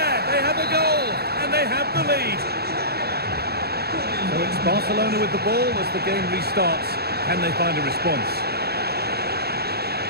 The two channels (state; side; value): late; left; 0.46 ms